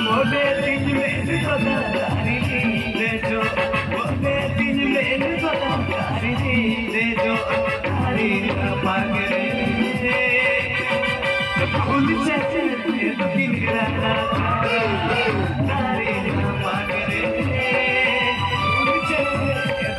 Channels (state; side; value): identical; both; correlation 1.00